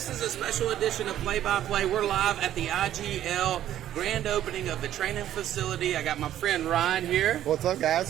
is a special edition of Play by Play. We're live at the IGL grand opening of the training facility. I got my friend Ryan here. What's up,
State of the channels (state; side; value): quieter; left; 11.9 dB